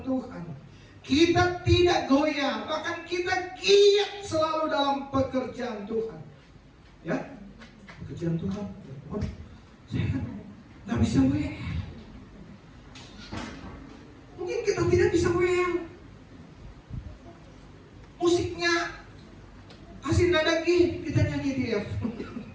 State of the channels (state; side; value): identical; both; correlation 1.00